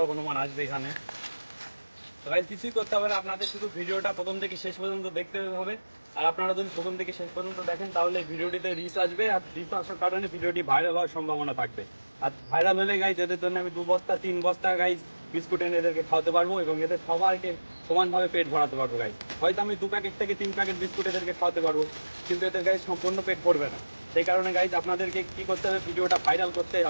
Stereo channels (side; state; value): both; inverted; correlation -1.00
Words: হনুমান আসবে এখানে। তো গাইস কিছুই করতে হবে না, আপনাদের শুধু ভিডিওটা প্রথম থেকে শেষ পর্যন্ত দেখতে হবে। আর আপনারা যদি প্রথম থেকে শেষ পর্যন্ত দেখেন তাহলে ভিডিওটিতে রিচ আসবে, আর রিচ আসার কারণে ভিডিওটি ভাইরাল হওয়ার সম্ভাবনা থাকবে। আর ভাইরাল হলে গাইস এদের জন্য আমি 2 বস্তা 3 বস্তা গাইস বিস্কুট এনে এদেরকে খাওয়াতে পারবো, এবং এদের সবাইকে সমানভাবে পেট ভরাতে পারবো গাইস। হয়তো আমি 2 প্যাকেট থেকে 3 প্যাকেট বিস্কুট এদেরকে খাওয়াতে পারবো, কিন্তু এদের গাইস সম্পূর্ণ পেট ভরবে না। সেই কারণে গাইস আপনাদেরকে কি করতে হবে, ভিডিওটা ভাইরাল করতেই